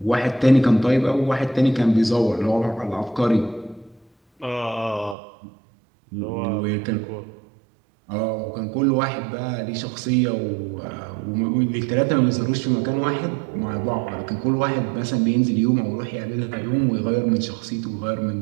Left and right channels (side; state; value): left; drops out; at 5.2 s